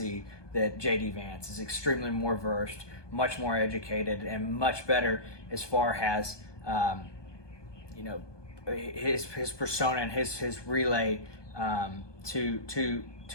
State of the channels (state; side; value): late; right; 1.2 ms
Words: that J.D. Vance is extremely more versed, much more educated, and much better as far as his persona and his relay to